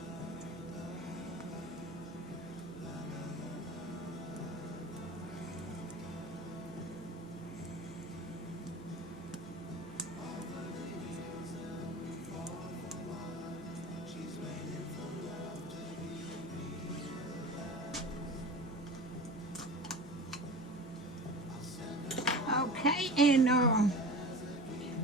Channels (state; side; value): noise; right; hum, 19 dB below the sound